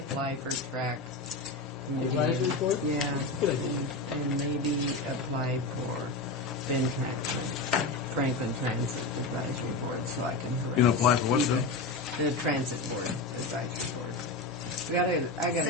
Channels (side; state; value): right; quieter; 3.1 dB